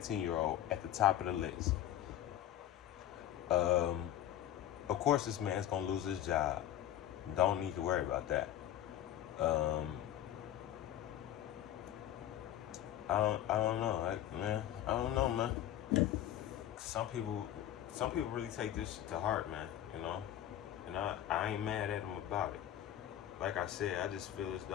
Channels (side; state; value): right; quieter; 11.9 dB